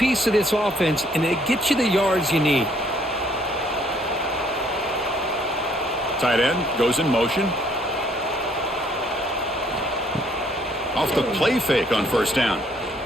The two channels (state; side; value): normal; both; correlation 0.64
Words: of this offense, and it gets you the yards you need. Tight end goes in motion. Off the play fake on first down.